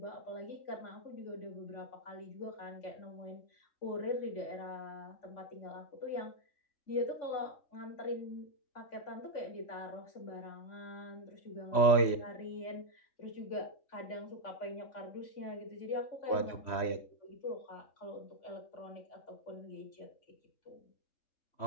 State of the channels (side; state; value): right; late; 3.1 ms